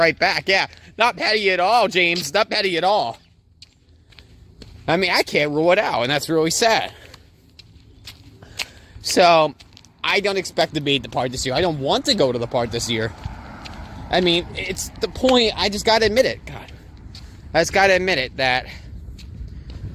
back. Yeah, not petty at all, James. Not petty at all. I mean, I can't rule it out, and that's really sad. So, I don't expect to be at the park this year. I don't want to go to the park this year. I mean, it's the point. I just gotta admit it. God. I just gotta admit it that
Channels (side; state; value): both; identical; correlation 1.00